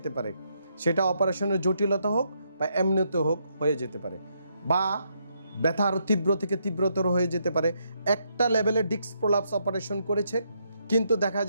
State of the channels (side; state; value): both; inverted; correlation -0.77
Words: পারে। সেটা অপারেশনের জটিলতা হোক বা এমনিতে হোক হয়ে যেতে পারে, বা ব্যথা আরও তীব্র থেকে তীব্রতর হয়ে যেতে পারে। একটা লেভেলে ডিস্ক প্রলাপস অপারেশন করেছে, কিন্তু দেখা